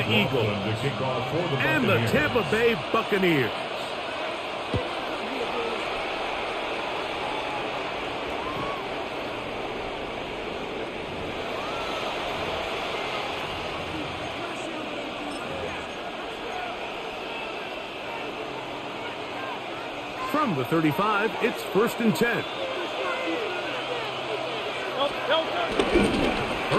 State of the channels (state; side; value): identical; both; correlation 1.00